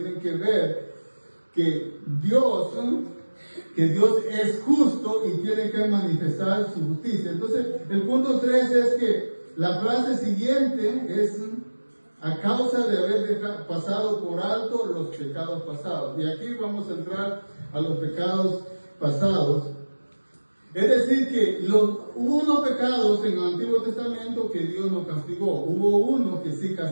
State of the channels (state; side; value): inverted; both; correlation -1.00